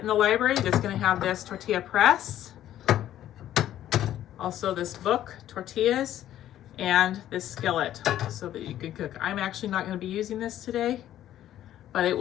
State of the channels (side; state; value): right; quieter; 12.2 dB